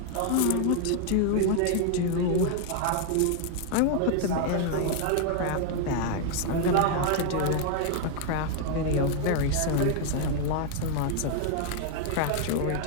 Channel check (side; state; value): both; different; correlation 0.00